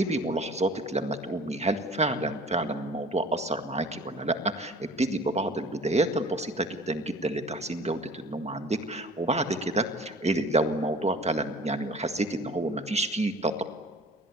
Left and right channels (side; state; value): both; normal; correlation 0.45